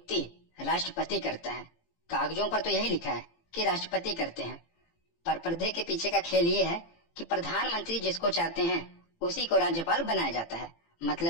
राष्ट्रपति करता है। कागजों पर तो यही लिखा है कि राष्ट्रपति करते हैं। पर पर्दे के पीछे का खेल ये है कि प्रधानमंत्री जिसको चाहते हैं उसी को राज्यपाल बनाया जाता है।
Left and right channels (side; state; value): right; late; 18 ms